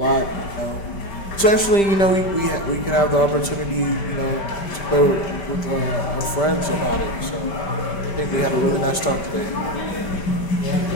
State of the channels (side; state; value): right; late; 5.1 ms